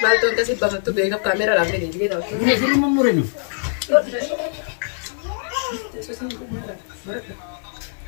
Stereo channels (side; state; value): right; silent; 56 dB below the other